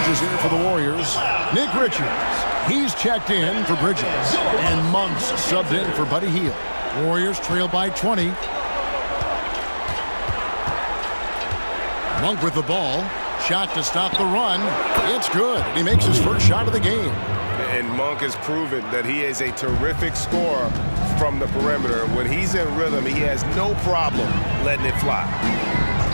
here for the Warriors. Nick Richards, he's checked in for Bridges. And Monk's subbed in for Buddy Hield. Warriors trail by 20. Monk with the ball. Shot to stop the run. It's good. He makes his first shot of the game. And Monk has proven that he is a terrific scorer from the perimeter. When he's in rhythm, he has no problem letting it fly.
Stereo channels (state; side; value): inverted; both; correlation -1.00